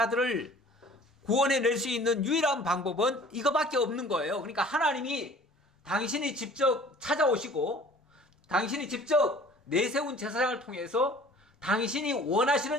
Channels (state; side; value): normal; both; correlation 0.48